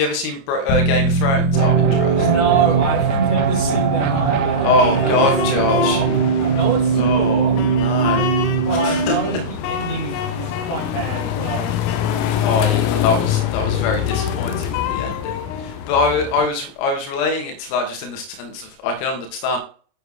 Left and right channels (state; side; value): late; right; 29 ms